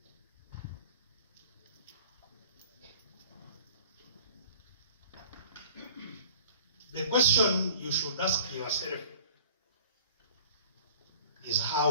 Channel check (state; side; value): inverted; both; correlation -0.46